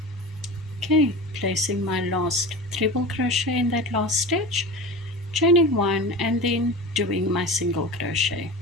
Okay, placing my last treble crochet in that last stitch, chaining 1 and then doing my single crochet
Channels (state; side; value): normal; both; correlation 0.31